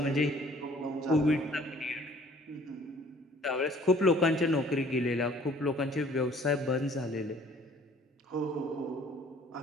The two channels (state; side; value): normal; both; correlation 0.55